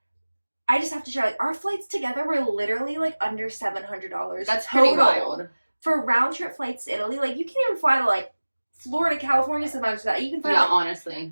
I just have to share, like, our flights together were literally like under $700. That's pretty wild. For round trip flights to Italy. Like, you can't even fly to like Florida, California sometimes for that. You can fly honestly.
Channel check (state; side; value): inverted; both; correlation -1.00